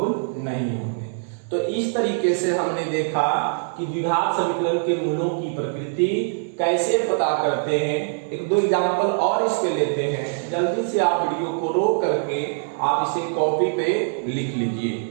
नहीं होंगे। तो इस तरीके से हमने देखा कि द्विघात समीकरण के मूलों की प्रकृति कैसे पता करते हैं। एक दो एग्जांपल और इस पे लेते हैं, जल्दी से आप वीडियो को रोक करके आप इसे कॉपी पे लिख लीजिए।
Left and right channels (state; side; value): silent; left; 63 dB below the other